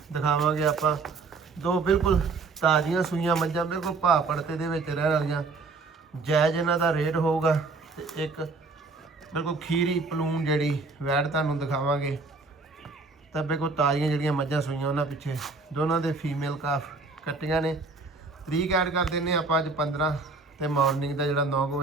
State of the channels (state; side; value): quieter; left; 4.0 dB